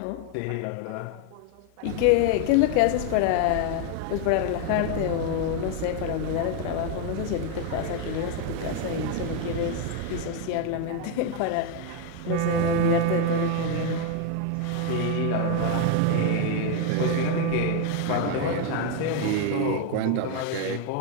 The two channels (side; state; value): both; different; correlation 0.01